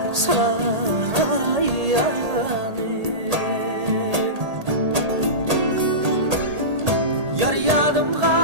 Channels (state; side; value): late; left; 1.8 ms